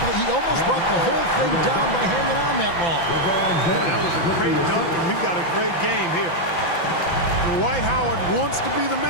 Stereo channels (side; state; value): right; late; 5.9 ms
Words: believe he almost brought the whole thing down by hanging on that long? Boy, that was a great dunk, and we've got a great game here. Dwight Howard wants to be the